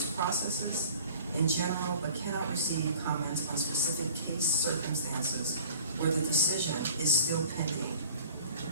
processes in general, but cannot receive comments on specific case circumstances where the decision is still pending.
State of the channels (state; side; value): inverted; both; correlation -0.48